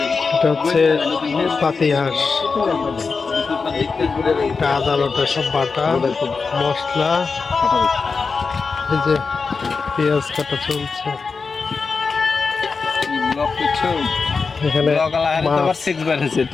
এটা হচ্ছে পাতিহাঁস, এটা আদা বাটা সব বাটা মশলা, এই যে পেঁয়াজ কাটা চলছে। এখানে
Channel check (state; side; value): quieter; right; 4.7 dB